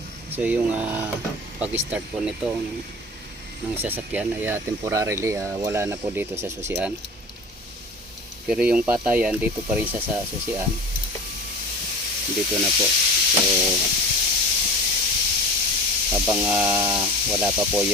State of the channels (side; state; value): both; normal; correlation 0.36